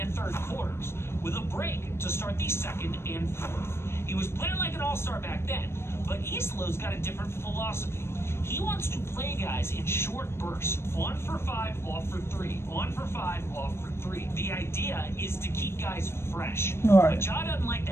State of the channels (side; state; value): right; late; 0.12 ms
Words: third quarters with a break to start the second and fourth. He was playing like an all-star back then, but Isolo's got a different philosophy. He wants to play guys in short bursts. On for 5, off for 3. On for 5, off for 3. The idea is to keep guys fresh. Right. But Ja doesn't like